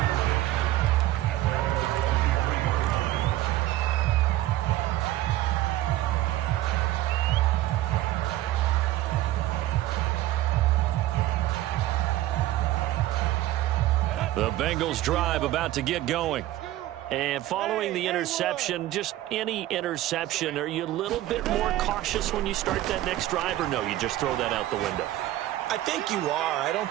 The Bengals drive about to get going. And following the interception, just any interception, are you a little bit more cautious when you start that next drive, or no, you just throw that out the window? I think you are. I don't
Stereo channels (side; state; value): left; quieter; 15.0 dB